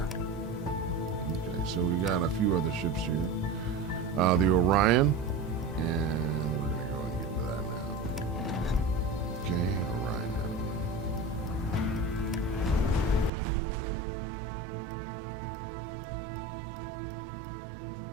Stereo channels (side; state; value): left; drops out; at 13.3 s